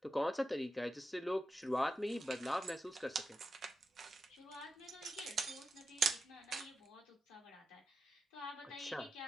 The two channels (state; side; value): normal; both; correlation 0.89